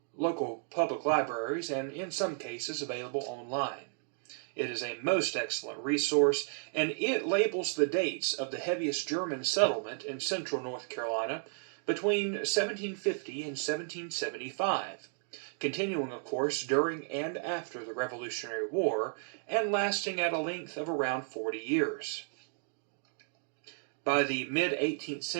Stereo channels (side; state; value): left; silent; 55 dB below the other